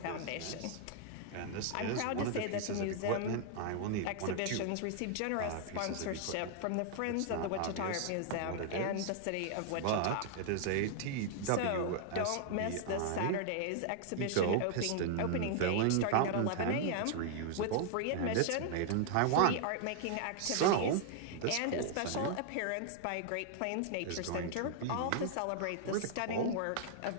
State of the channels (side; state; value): both; different; correlation 0.00